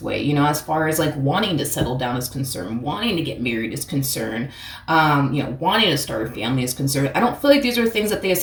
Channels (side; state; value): both; identical; correlation 1.00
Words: way, as far as like wanting to settle down is concerned, wanting to get married is concerned, wanting to start a family is concerned. I don't feel like these are things that they